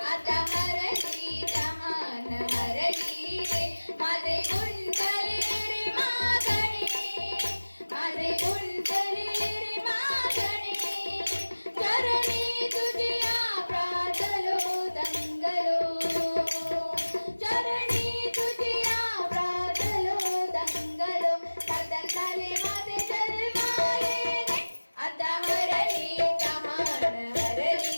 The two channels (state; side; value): inverted; both; correlation -1.00